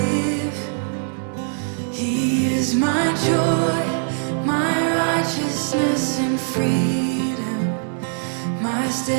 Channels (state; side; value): silent; left; digital silence